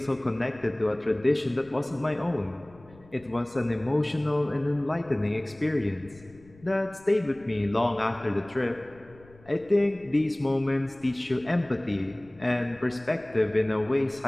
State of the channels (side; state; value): left; noise; rumble, 25 dB below the sound